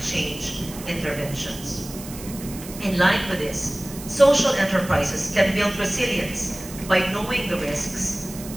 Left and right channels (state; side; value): noise; right; hiss, 14 dB below the sound